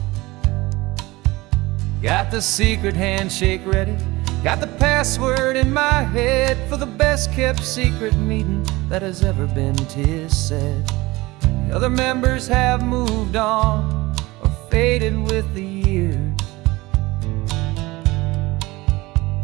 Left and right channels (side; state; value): left; quieter; 20.8 dB